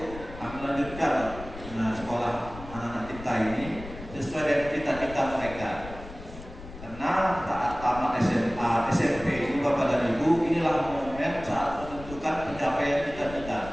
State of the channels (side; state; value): left; noise; rumble, 14 dB below the sound